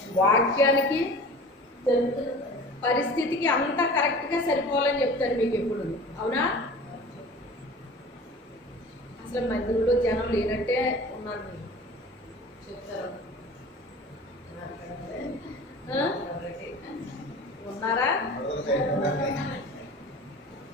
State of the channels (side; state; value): both; normal; correlation 0.40